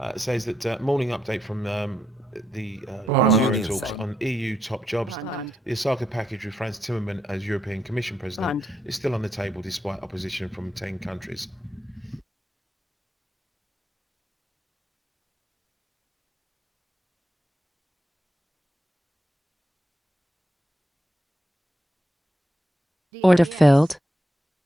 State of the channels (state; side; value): normal; both; correlation 0.81